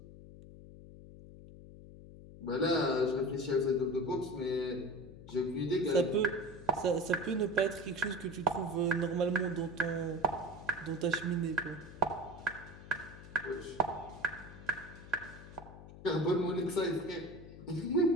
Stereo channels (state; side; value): noise; left; hum, 16 dB below the sound